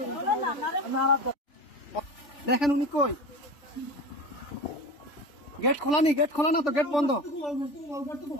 দেখেন উনি কই, গেট খোলা নি, গেট খোলা না তো, গেট বন্ধ।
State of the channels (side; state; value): right; late; 3.4 ms